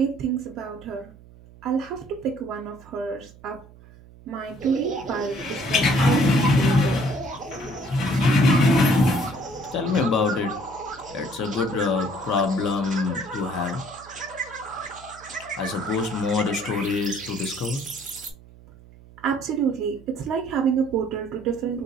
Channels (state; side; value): noise; right; hum, 22 dB below the sound